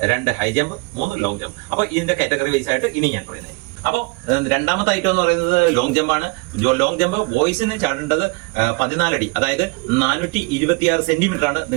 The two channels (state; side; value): quieter; left; 28.1 dB